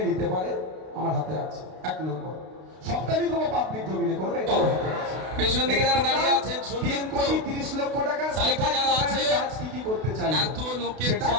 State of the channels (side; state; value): left; late; 32 ms